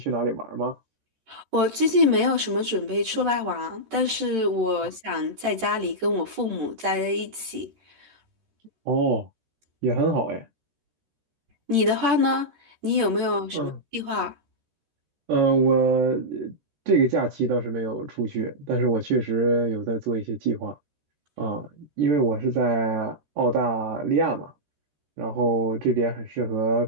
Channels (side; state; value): left; late; 13 ms